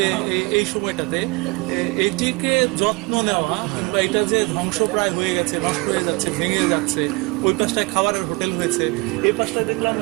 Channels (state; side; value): quieter; left; 27.1 dB